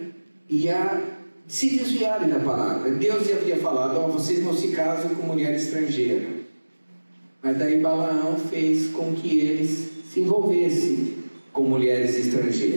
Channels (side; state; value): both; inverted; correlation -1.00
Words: e a se desviarem da palavra. Deus havia falado: vocês não se casam com mulher estrangeira. Mas daí Balaão fez com que eles se envolvessem com mulheres